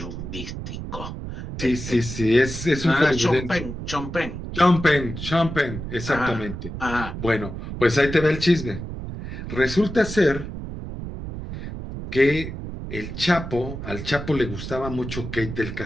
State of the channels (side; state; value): right; noise; rumble, 8 dB below the sound